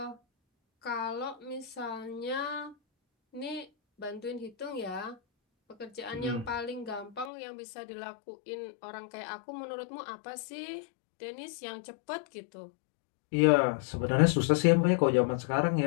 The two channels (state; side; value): drops out; right; at 7.3 s